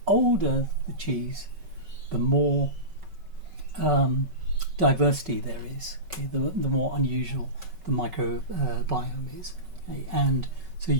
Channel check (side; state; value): left; late; 5.3 ms